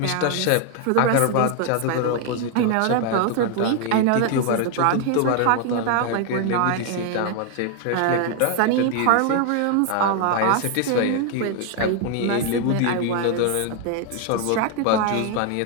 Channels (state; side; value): different; both; correlation 0.01